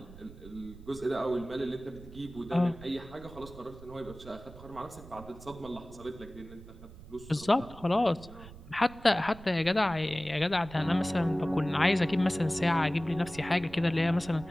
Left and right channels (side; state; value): right; noise; rumble, 17 dB below the sound